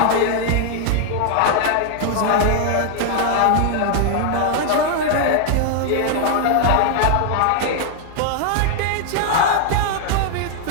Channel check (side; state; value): both; different; correlation 0.00